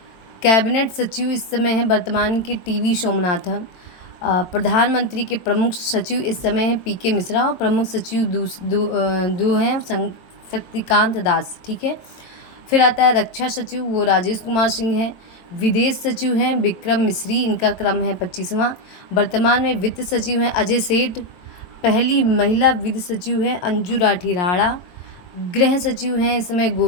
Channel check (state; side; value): late; right; 22 ms